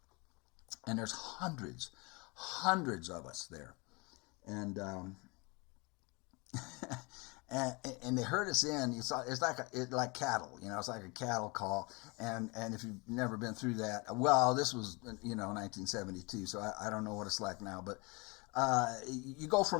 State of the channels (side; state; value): right; quieter; 27.8 dB